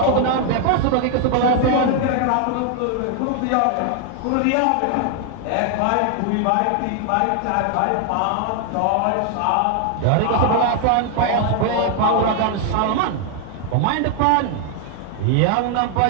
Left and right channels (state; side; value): different; both; correlation 0.00